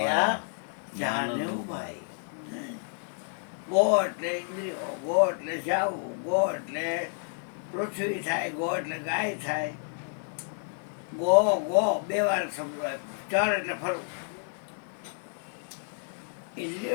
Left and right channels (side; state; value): right; silent; digital silence